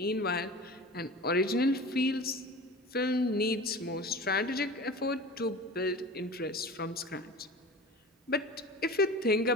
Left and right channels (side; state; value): both; normal; correlation 0.36